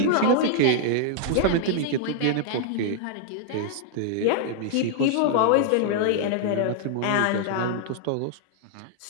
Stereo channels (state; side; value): different; both; correlation 0.00